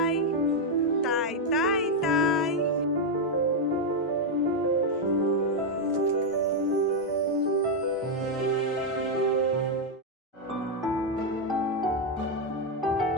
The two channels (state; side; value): normal; both; correlation 0.00